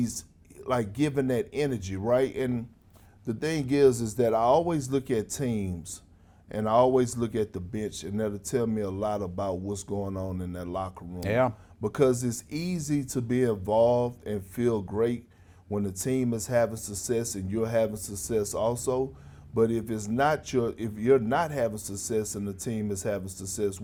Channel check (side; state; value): both; identical; correlation 1.00